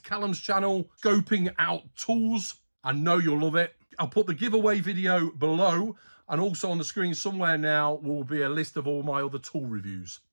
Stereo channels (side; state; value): both; inverted; correlation -1.00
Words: Callum's channel, Scoping Out Tools. I know you'll love it. I'll put the giveaway video below, and also on the screen somewhere now will be a list of all my other tool reviews.